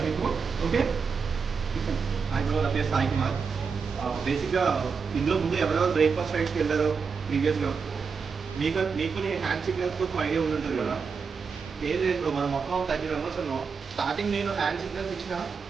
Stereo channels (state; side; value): quieter; left; 5.5 dB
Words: మీకు. ఓకే, ఇప్పుడు నా పేరు సాయి కుమార్. బేసిక్గా ఇందులో ముందు ఎవరెవరు బ్రేక్ఫాస్ట్ రైడ్స్కి వెళ్ళారో ప్రీవియస్గా మీకు నేను హ్యాండ్ సిగ్నల్స్ కోసం ఐడియా ఉంటుంది కదా. ఏం లేదు, మనం మొత్తం 30 మెంబర్స్ ఉన్నాం. స్టార్టింగ్ నేను హ్యాండ్ సిగ్నల్స్ ఇచ్చిన